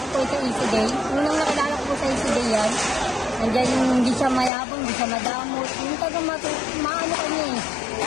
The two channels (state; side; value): drops out; right; at 4.5 s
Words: ko po sa Easy Day. Unang nakilala ko po sa Easy Day yan. Nandiyan yung hindi siya mayabang, hindi siya madamot. Yung tagang maano kanya